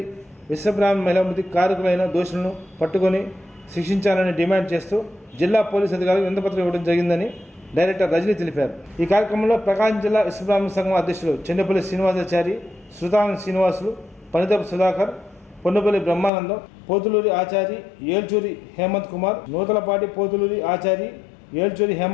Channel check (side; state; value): right; drops out; at 16.3 s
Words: విశ్వబ్రాహ్మణ మహిళామృతి కారకులైన దోషులను పట్టుకొని శిక్షించాలని డిమాండ్ చేస్తూ జిల్లా పోలీసు అధికారులకు వినతిపత్రం ఇవ్వడం జరిగిందని డైరెక్టర్ రజనీ తెలిపారు. ఈ కార్యక్రమంలో ప్రకాశం జిల్లా విశ్వబ్రాహ్మణ సంఘం అధ్యక్షులు చెండపల్లి శ్రీనివాసాచారి, శృతాంగ శ్రీనివాసులు, పనిదపు సుధాకర్, పొన్నుపల్లి బ్రహ్మానందం, పోతులూరి ఆచారి, ఏల్చూరి హేమంత్ కుమార్, నూతలపాటి పోతులూరి ఆచారి, ఏల్చూరి